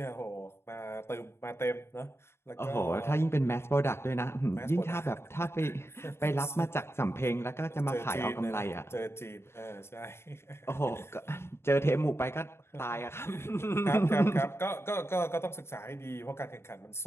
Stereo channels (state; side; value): late; right; 0.12 ms